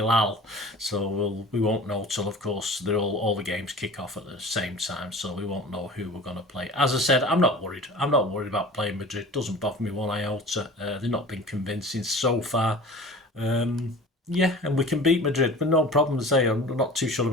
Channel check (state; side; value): normal; both; correlation 0.40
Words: So we won't know till, of course, all the games kick off at the same time, so we won't know who we're going to play. As I said, I'm not worried. I'm not worried about playing Madrid. Doesn't bother me one iota. They've not been convincing so far. Yeah, and we can beat Madrid, but no problem to say. I'm not too sure